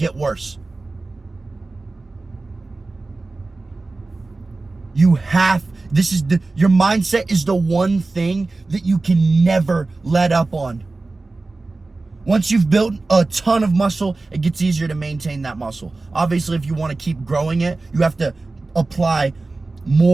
worse. Your mindset is the one thing that you can never let up on. Once you've built a ton of muscle, it gets easier to maintain that muscle. Obviously, if you want to keep growing it, you have to apply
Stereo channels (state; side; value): quieter; left; 3.4 dB